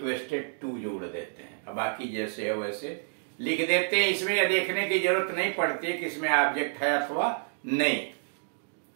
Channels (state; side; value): silent; left; digital silence